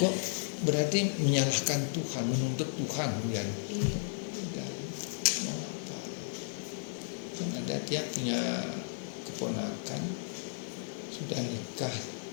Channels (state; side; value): silent; right; digital silence